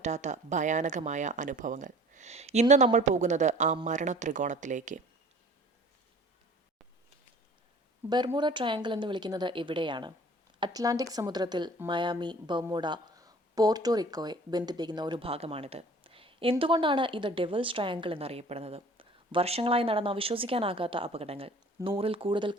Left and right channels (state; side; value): normal; both; correlation 0.48